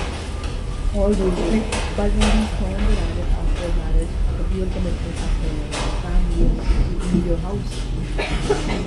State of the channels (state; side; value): identical; both; correlation 1.00